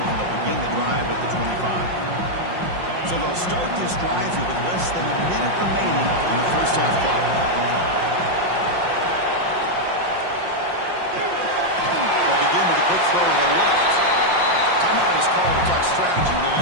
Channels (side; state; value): left; late; 5.6 ms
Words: they'll begin the drive at the 25. So they'll start this drive here with less than a minute remaining on the first half clock. Quick throw to the left. Timeout is called to talk strategy